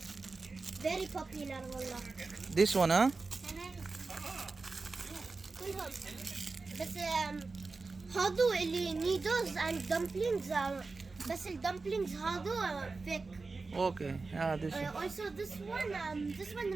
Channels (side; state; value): left; quieter; 3.9 dB